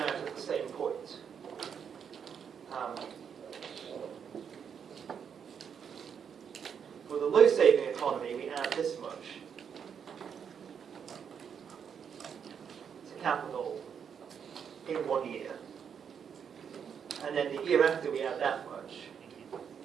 out at the same point. For the low saving economy, we add this much to capital in 1 year. And then the year after, we add that much.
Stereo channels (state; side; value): quieter; left; 7.4 dB